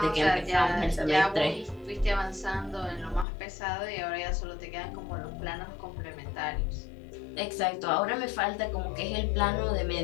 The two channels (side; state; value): right; drops out; at 3.2 s